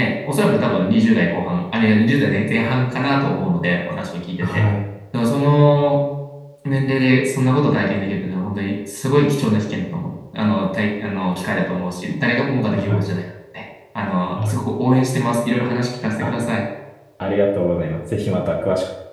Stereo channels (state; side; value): identical; both; correlation 1.00